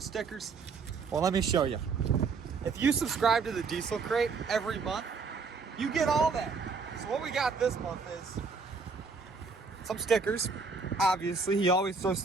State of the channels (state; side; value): quieter; left; 4.8 dB